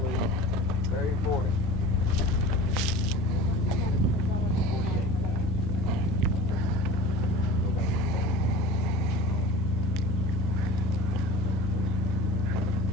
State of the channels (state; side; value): normal; both; correlation 0.38